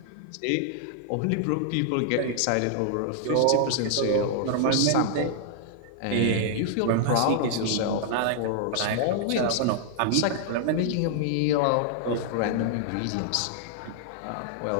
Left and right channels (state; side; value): different; both; correlation -0.01